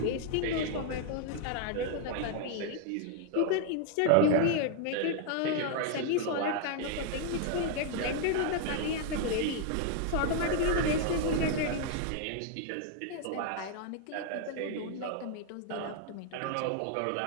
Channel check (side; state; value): both; different; correlation 0.00